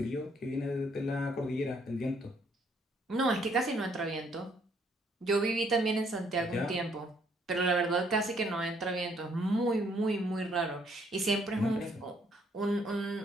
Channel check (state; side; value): normal; both; correlation 0.67